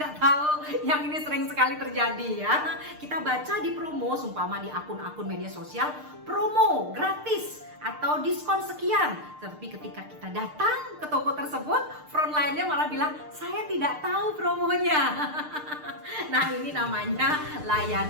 tahu. Yang ini sering sekali terjadi ya. Kita baca di promo, sumpama di akun-akun media sosial, promo gratis atau diskon sekian. Tetapi ketika kita datang ke toko tersebut, frontline-nya malah bilang, saya tidak tahu promonya. Nah, ini namanya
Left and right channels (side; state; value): left; late; 6.6 ms